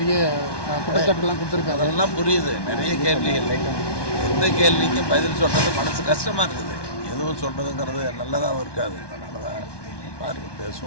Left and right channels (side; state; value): right; late; 1.2 ms